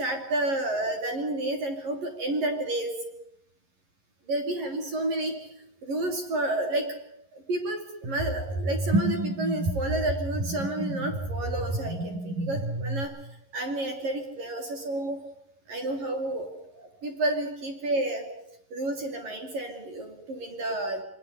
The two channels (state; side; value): late; left; 11 ms